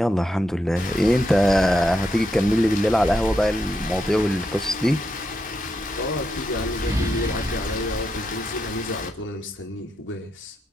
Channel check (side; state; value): both; normal; correlation 0.83